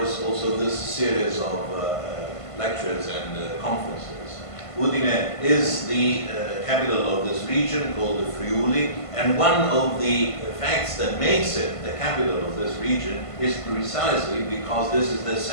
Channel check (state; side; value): late; right; 1.5 ms